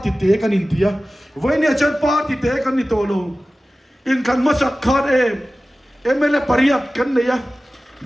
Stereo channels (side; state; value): both; normal; correlation 0.96